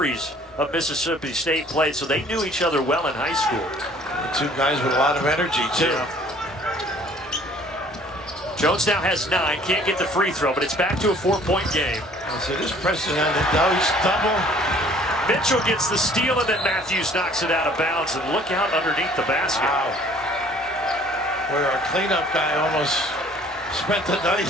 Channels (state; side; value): normal; both; correlation 0.55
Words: of Mississippi State played, so they knew each other well in high school. The 2 guys with a lot of energy, too. Yeah. Jones now has 9, can't get the free throw, but it's back to a 4-point game. So this press is on the double. Mitchell gets the steal, and then Matthews knocks it out of bounds, and look out underneath the basket. Wow. Where our cleanup guy almost spent the night